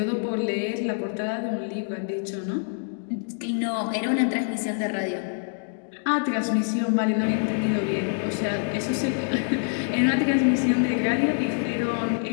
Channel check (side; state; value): right; silent; 61 dB below the other